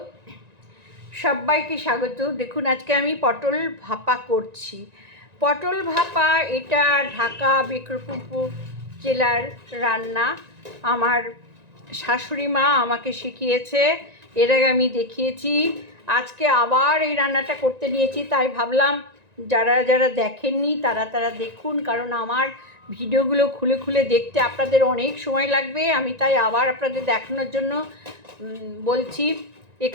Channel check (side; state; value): left; late; 1.9 ms